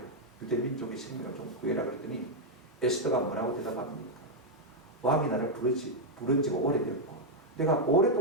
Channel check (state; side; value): normal; both; correlation -0.01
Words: 유대 민족의 생명을 좀 구해라. 그랬더니 에스더가 뭐라고 대답합니까? 왕이 나를 부른 지가 오래됐고 내가